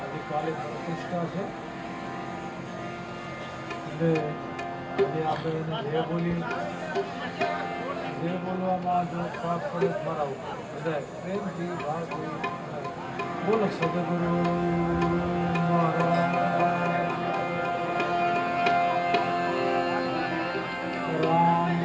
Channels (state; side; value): identical; both; correlation 1.00